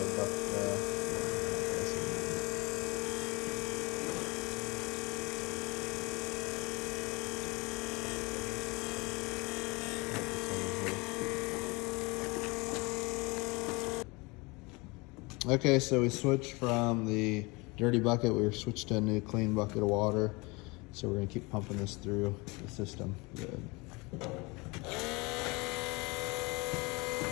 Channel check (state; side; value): quieter; right; 26.0 dB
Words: bucket Okay, so we switched from the dirty bucket, we switched to a new clean bucket of water. So we're gonna keep pumping this through the system. Good.